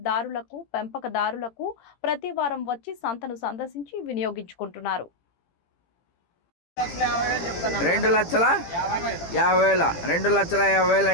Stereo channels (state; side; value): late; right; 18 ms